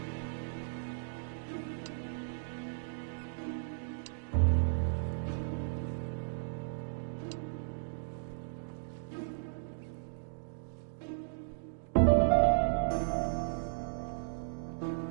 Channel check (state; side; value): silent; left; digital silence